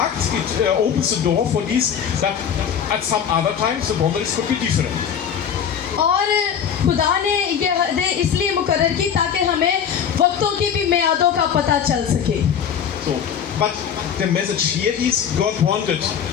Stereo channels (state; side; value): quieter; right; 8.1 dB